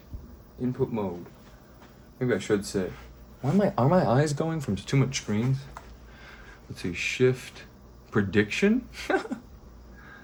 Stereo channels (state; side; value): identical; both; correlation 1.00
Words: input mode. Maybe I should say. Are my eyes going from too much screens? Let's see. Shift, prediction.